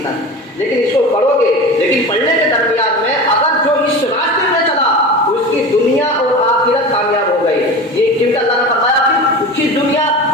تک، لیکن اس کو پڑھو گے، لیکن پڑھنے کے درمیان میں اگر جو اس راستے میں چلا اس کی دنیا اور آخرت کامیاب ہو گئی۔ یہ کیونکہ اللہ نے فرمایا کہ اس کی دنیا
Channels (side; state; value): both; normal; correlation 0.31